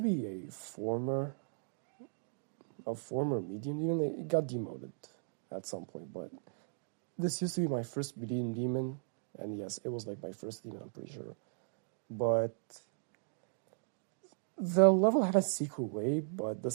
be a former medium demon. It got demoted at some point, but this used to be my first medium demon, and yes, it was like my first demon, I'm pretty sure. But the level had a secret way, but the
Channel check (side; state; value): left; silent; digital silence